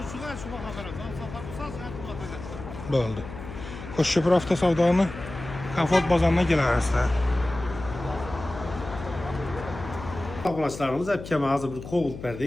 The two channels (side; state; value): left; noise; hum, 11 dB below the sound